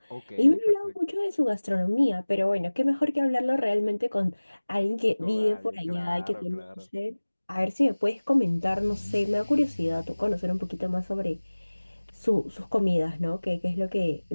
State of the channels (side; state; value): both; inverted; correlation -1.00